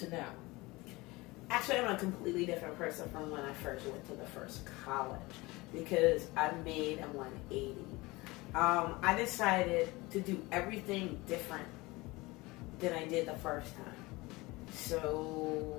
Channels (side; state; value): right; quieter; 22.3 dB